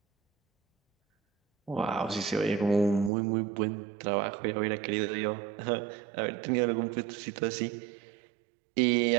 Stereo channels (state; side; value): drops out; left; at 3.1 s